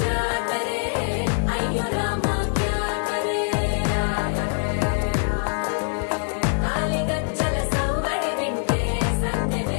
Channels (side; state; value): right; silent; digital silence